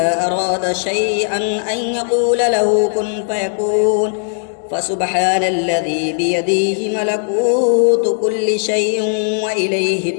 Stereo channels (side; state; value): right; silent; digital silence